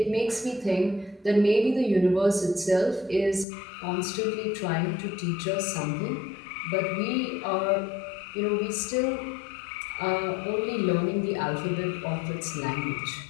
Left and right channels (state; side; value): drops out; right; at 3.5 s